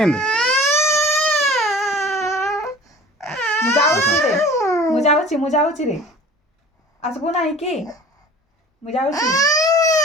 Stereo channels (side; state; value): both; normal; correlation 0.44